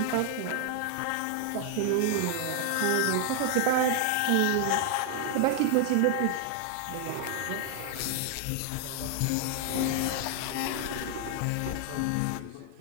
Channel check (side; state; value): both; different; correlation 0.00